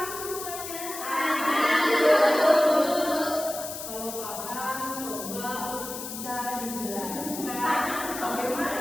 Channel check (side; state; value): left; noise; hiss, 8 dB below the sound